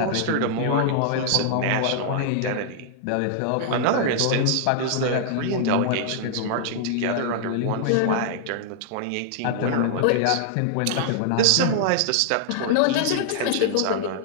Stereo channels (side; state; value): both; different; correlation -0.01